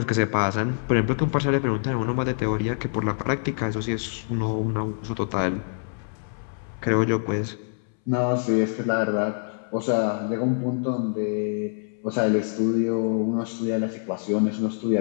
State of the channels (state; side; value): silent; right; 61 dB below the other